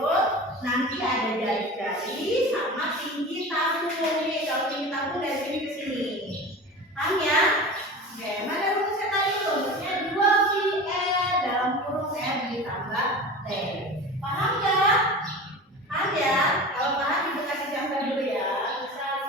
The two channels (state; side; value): normal; both; correlation 0.33